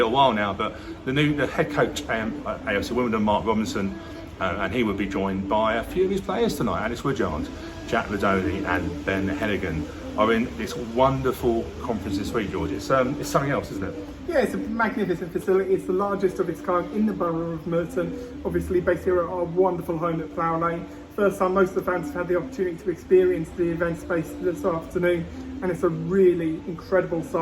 while now, but the head coach at AFC Wimbledon, Mark Robinson, and he will be joined by a few of his players tonight. Alex Woodyard, Jack Ladoni and Ben Hennigan are in this wonderful conference this week, George. It's something else, isn't it? Yeah, it's a magnificent facility. It's the largest of its kind in the borough of Merton. Obviously based here at our wonderful home at Plough Lane. First time most of the fans have had the opportunity to experience the event space this afternoon, and it's a really incredible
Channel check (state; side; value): identical; both; correlation 1.00